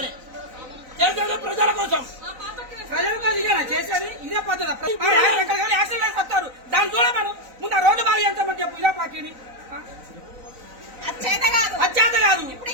చేసేది ప్రజల కోసం. ప్రజల కోసం ఇదేనా చేసేది? ఇదే పద్ధతి. యాక్సిడెంట్ వేసి వస్తారు, దాన్ని చూడమను. ముందు ఆ రోడ్డు బాగా చేస్తామని చెప్పు. ఇదే పార్టీని అచ్చేత కాదు.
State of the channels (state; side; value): late; left; 3.9 ms